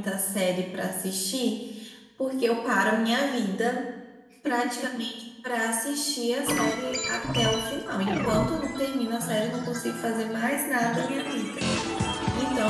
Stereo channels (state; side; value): identical; both; correlation 1.00